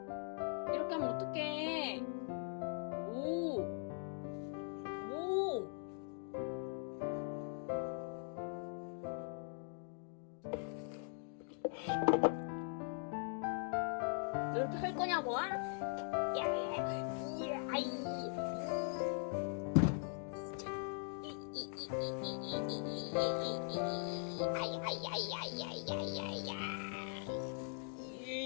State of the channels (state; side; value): silent; right; 50 dB below the other